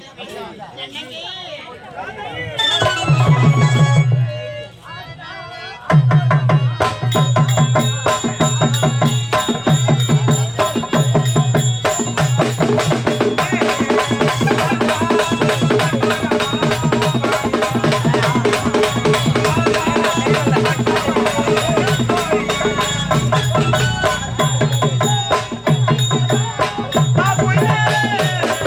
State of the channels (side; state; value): both; identical; correlation 1.00